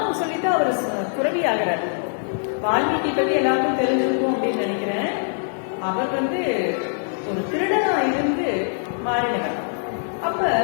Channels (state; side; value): silent; right; digital silence